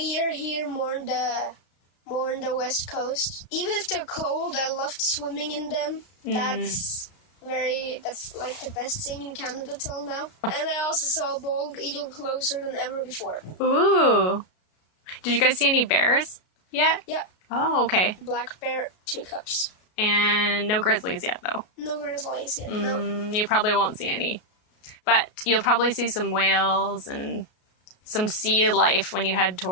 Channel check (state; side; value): late; right; 33 ms